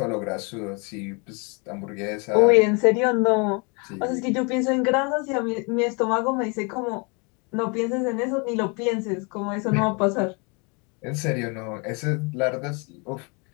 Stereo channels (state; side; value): quieter; right; 32.4 dB